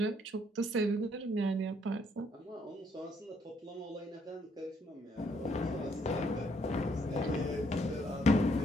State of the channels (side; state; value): both; normal; correlation 0.70